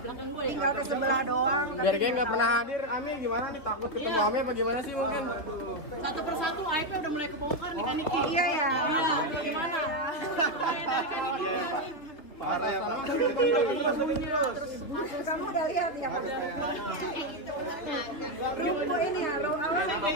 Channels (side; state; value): right; late; 3.0 ms